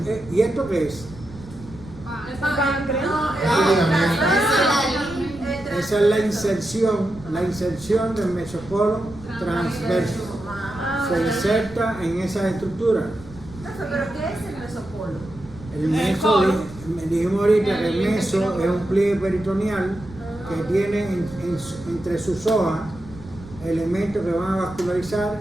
¿y esto qué es? Esa es la inserción del mesocolon transverso. Se inserta en esa estructura. ¿Pero qué es el mesopolo? El meso, dijimos ahorita que el meso es un pliegue peritoneal que tiene entre sus hojas elementos que van a vascularizar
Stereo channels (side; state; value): right; noise; rumble, 17 dB below the sound